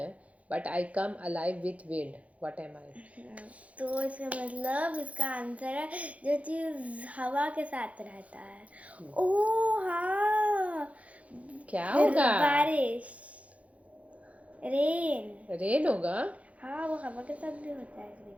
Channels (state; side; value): late; left; 0.066 ms